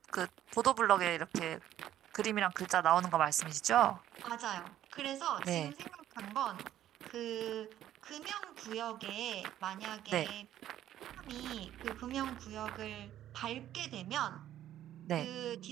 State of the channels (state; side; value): quieter; left; 12.1 dB